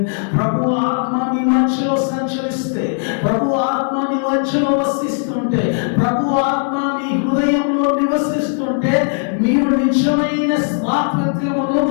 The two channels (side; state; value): right; silent; 59 dB below the other